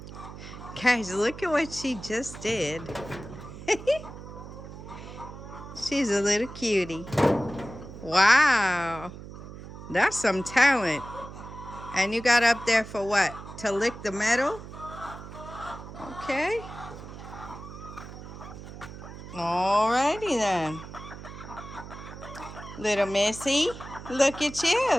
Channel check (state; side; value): noise; right; hum, 13 dB below the sound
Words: Guys, look at what she just did. She's a little cutie. Wow. That's some talent. And you got up there for what? To lick the metal? Okay. Alrighty then. Little Missy, look at